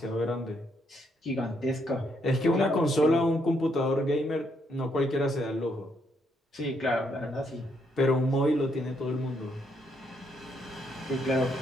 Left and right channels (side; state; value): both; normal; correlation 0.75